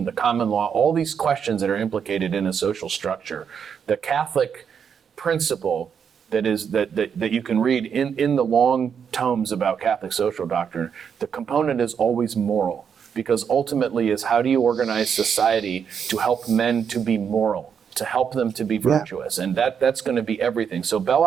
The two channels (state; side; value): quieter; left; 7.2 dB